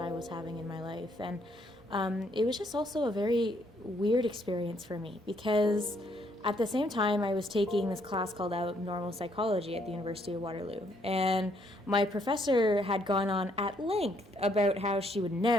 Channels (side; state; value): both; normal; correlation 0.70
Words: was having in my life. And it was just also a very weird experience for me because at the same time, I was taking this class called Abnormal Psychology at the University of Waterloo. And my professor had gone on at length about how she would